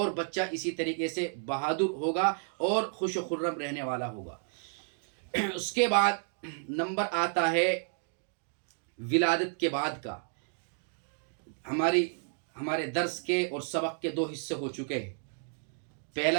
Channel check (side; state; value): left; silent; 57 dB below the other